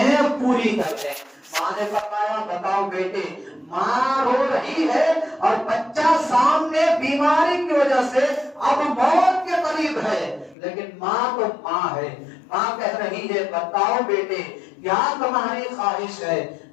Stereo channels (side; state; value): right; drops out; at 10.6 s